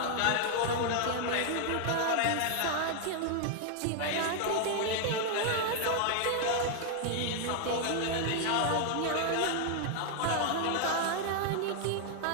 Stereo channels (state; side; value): different; both; correlation 0.00